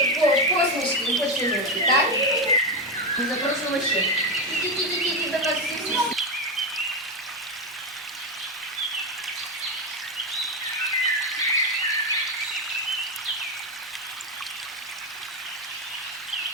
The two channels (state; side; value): normal; both; correlation 0.11